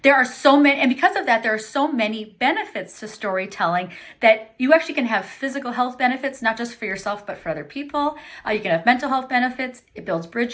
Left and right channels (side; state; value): both; identical; correlation 1.00